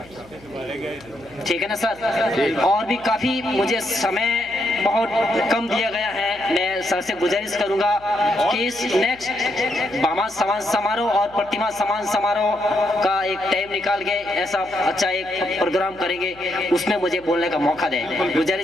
ठीक है ना सर? और भी काफी मुझे समय बहुत कम दिया गया है। मैं सर से गुजारिश करूंगा कि इस नेक्स्ट भामा समाज समारोह और प्रतिमा समाज समारोह का एक टाइम निकाल के ऐसा अच्छा एक प्रोग्राम करेंगे, उसमें मुझे बोलने का मौका दें।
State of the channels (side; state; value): left; noise; hum, 25 dB below the sound